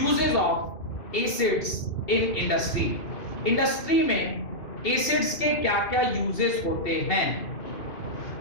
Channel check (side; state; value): right; late; 2.7 ms